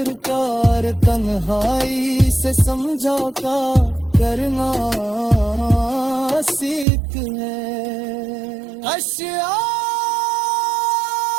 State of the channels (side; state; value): left; drops out; at 6.9 s